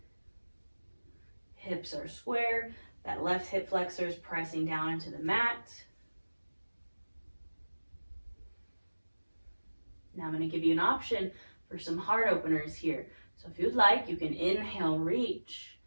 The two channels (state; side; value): inverted; both; correlation -1.00